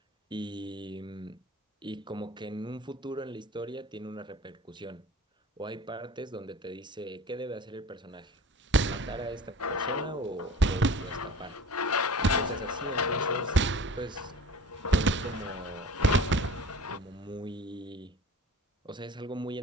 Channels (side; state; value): both; normal; correlation 0.42